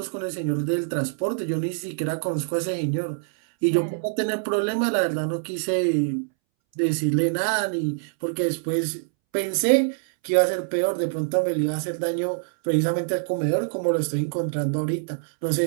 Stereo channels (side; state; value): left; silent; 62 dB below the other